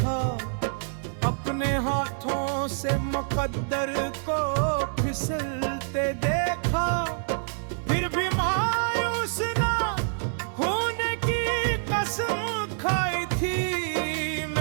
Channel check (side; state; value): left; silent; digital silence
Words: अपने हाथों से मुकद्दर को फिसलते देखा, फिर भी मायूस ना होने की कसम खाई थी।